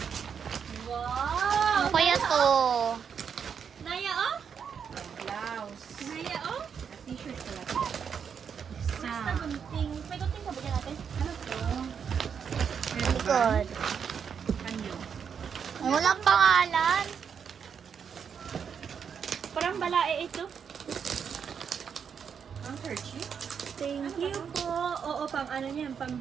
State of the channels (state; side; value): quieter; left; 7.1 dB